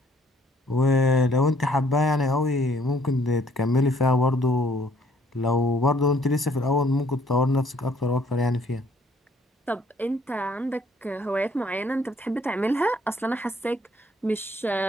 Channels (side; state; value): both; normal; correlation 0.63